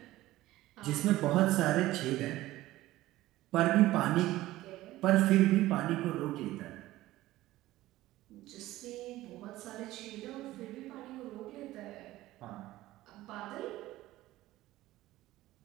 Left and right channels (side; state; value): left; quieter; 16.4 dB